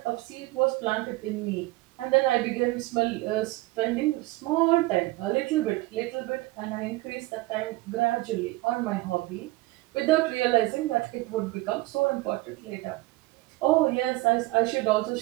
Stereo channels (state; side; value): quieter; left; 20.0 dB